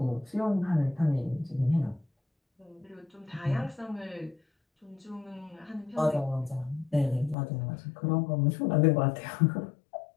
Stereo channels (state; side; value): drops out; right; at 7.4 s